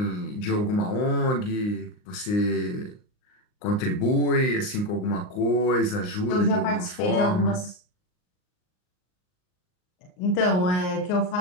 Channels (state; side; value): late; right; 39 ms